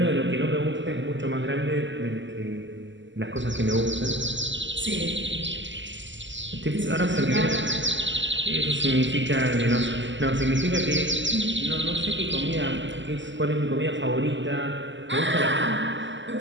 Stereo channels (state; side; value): late; left; 0.54 ms